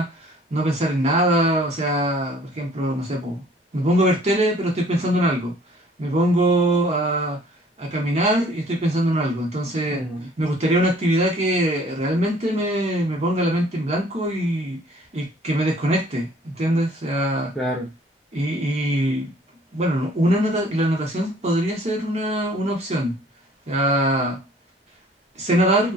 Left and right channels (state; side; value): normal; both; correlation 0.55